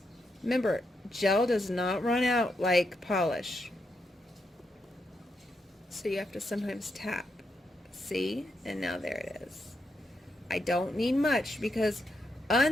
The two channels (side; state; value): both; normal; correlation 0.82